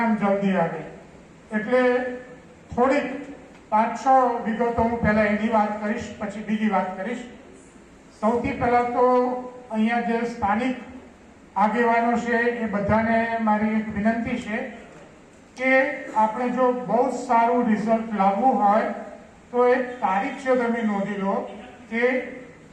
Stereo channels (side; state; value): both; identical; correlation 1.00